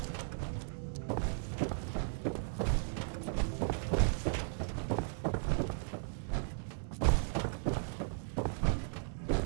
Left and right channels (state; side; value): silent; left; 54 dB below the other